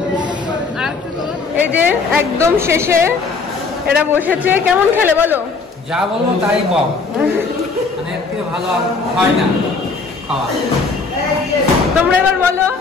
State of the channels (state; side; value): quieter; right; 4.3 dB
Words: এই যে একদম শেষে এরা বসেছে, কেমন খেলে বলো? যা বলবো তাই বল, মানে এর থেকে ভালো আর হয় না খাওয়া। তোমরা এবার বলো।